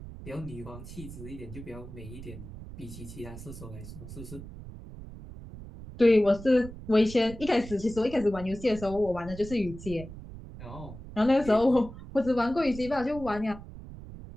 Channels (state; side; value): noise; right; rumble, 13 dB below the sound